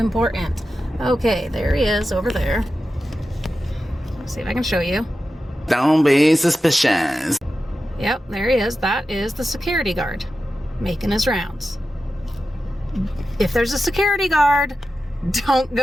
Okay, there he is over there. Let's see if I can show you. Don't be suspicious. Yep, there he is. That is the security guard making his rounds. If there's a security guard, don't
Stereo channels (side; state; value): both; normal; correlation 0.92